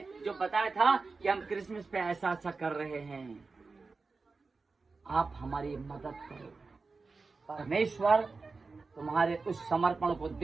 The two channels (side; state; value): left; quieter; 4.1 dB